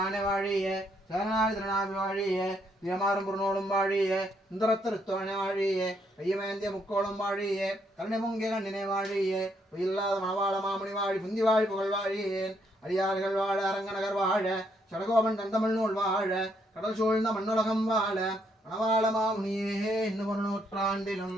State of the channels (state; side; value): normal; both; correlation 0.73